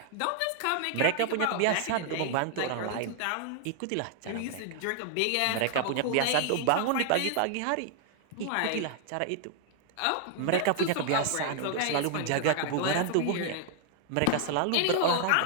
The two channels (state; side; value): different; both; correlation 0.00